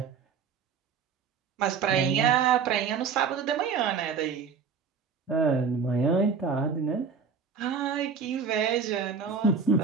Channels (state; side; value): quieter; left; 6.0 dB